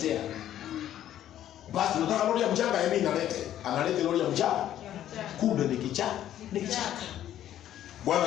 Basi nataka lori ya mchanga yeye analete lori ya mchanga. Kumbe ni kichaka. Bwana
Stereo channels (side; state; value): right; quieter; 11.7 dB